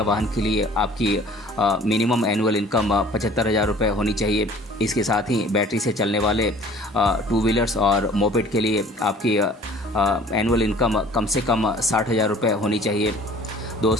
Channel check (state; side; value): normal; both; correlation 0.50